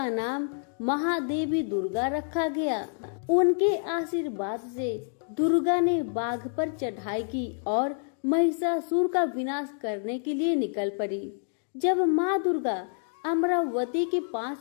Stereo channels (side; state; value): right; silent; digital silence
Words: नाम महादेवी दुर्गा रखा गया। उनके आशीर्वाद से दुर्गा ने बाघ पर चढ़ाई की और महिषासुर का विनाश करने के लिए निकल पड़ी। जब माँ दुर्गा अमरावती के